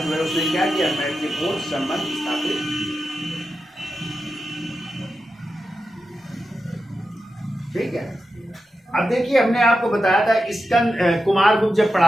है उसने क्या किया? मैत्रीपूर्ण संबंध स्थापित। ठीक है। अब देखिए, हमने आपको बताया था कुमार गुप्त जब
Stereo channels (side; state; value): both; normal; correlation 0.90